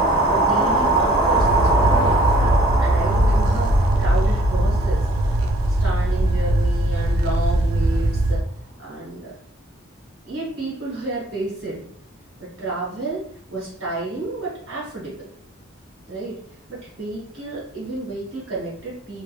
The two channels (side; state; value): both; normal; correlation 0.60